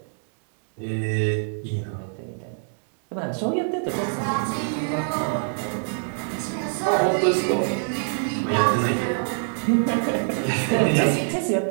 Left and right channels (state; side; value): silent; left; digital silence